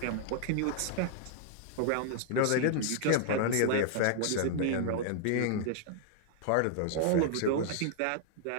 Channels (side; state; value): both; different; correlation 0.00